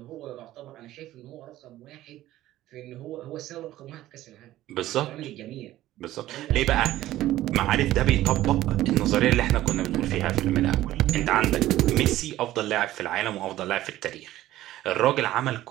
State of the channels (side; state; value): left; quieter; 14.8 dB